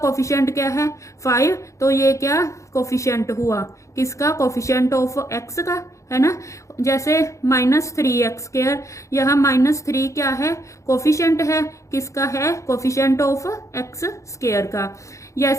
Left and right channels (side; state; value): right; late; 0.15 ms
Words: क्या है 5, तो ये क्या कोफिशिएंट हुआ किसका, कोफिशिएंट ऑफ x का, है ना। जैसे -3x², यहाँ -3 क्या है कोफिशिएंट है किसका है, कोफिशिएंट ऑफ x² का।